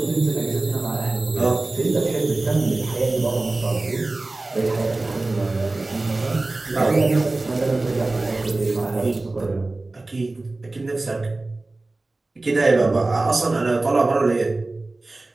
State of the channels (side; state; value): left; quieter; 3.1 dB